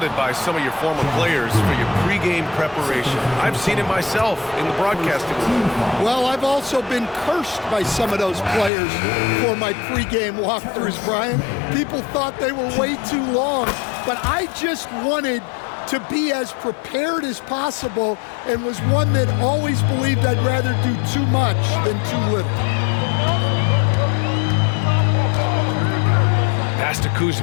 by some of your former players for your pregame preparation. I've seen it myself in the broadcasting room. Well, I've also been cursed by some of those players for my pregame walkthroughs, Brian. People thought they were way too long, but I just wanted to be as prepared as possible and was one that always believed I'd rather do too much than too little. Pass to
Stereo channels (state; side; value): drops out; right; at 8.7 s